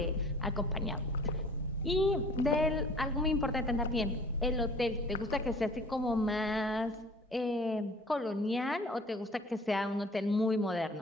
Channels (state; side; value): normal; both; correlation 0.49